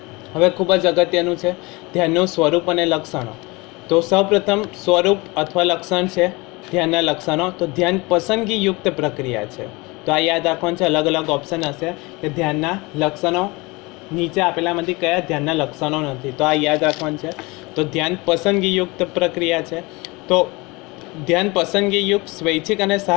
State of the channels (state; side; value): quieter; right; 24.7 dB